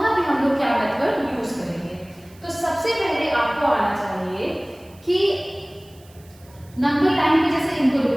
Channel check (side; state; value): right; noise; hiss, 28 dB below the sound